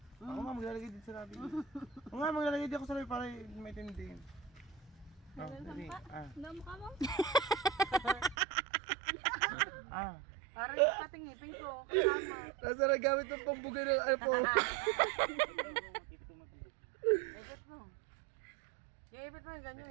Ako nga maglalagay din sa labi. Ako nga maglalagay din ako sa labi para maitim din. Dali. Namukha mo? Parang yung pating ngipin ko. Kasama. Nasa nagamit ng pambugay ng ano po. Ipit mo. Yung ipit mo,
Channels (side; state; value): left; drops out; at 8.3 s